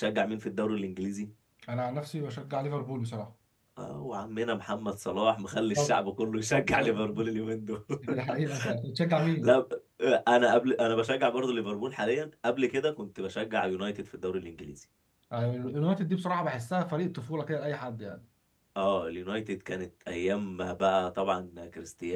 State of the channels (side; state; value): both; identical; correlation 1.00